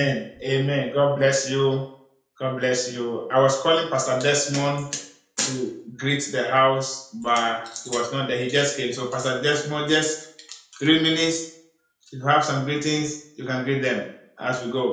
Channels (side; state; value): both; identical; correlation 1.00